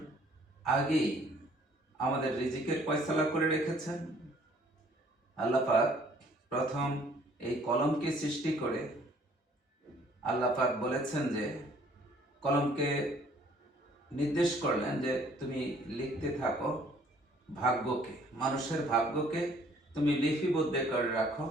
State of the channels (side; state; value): both; normal; correlation 0.59